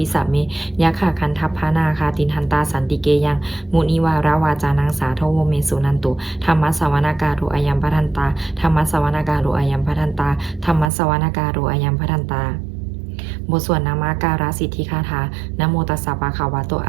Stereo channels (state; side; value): drops out; left; at 10.9 s